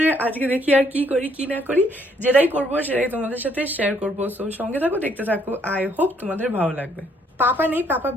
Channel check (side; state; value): both; normal; correlation 0.68